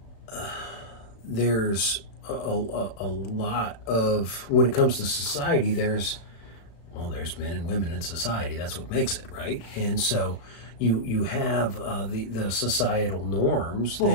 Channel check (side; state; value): right; late; 36 ms